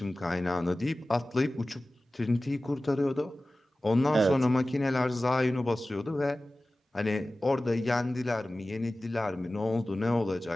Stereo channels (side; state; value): both; normal; correlation 0.97